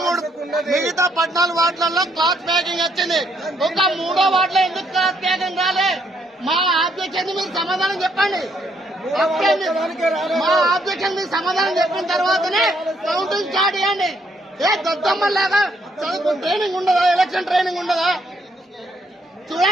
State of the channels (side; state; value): both; normal; correlation 0.72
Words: వార్డులలో క్లాత్ ప్యాకింగ్ వచ్చింది, ఒక 3వ వార్డులో ఎందుకు క్లాత్ ప్యాకింగ్ రాలే? మా ఆబ్జెక్షన్ మీరు సమాధానం చెప్పండి. మా ఆబ్జెక్షన్ మీరు సమాధానం చెప్పిన తర్వాతనే కౌంటింగ్ స్టార్ట్ చేయండి. ఏ దద్దమ్మలాగా చదువు ట్రైనింగ్ ఉండదా? ఎలక్షన్ ట్రైనింగ్ ఉండదా?